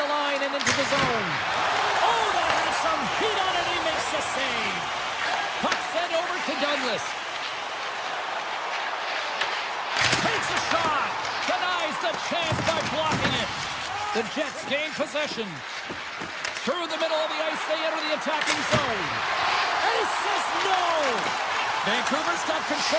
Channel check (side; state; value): both; identical; correlation 1.00